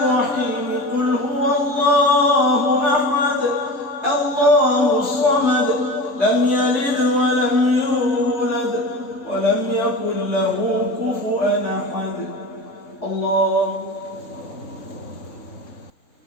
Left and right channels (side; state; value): right; late; 3.8 ms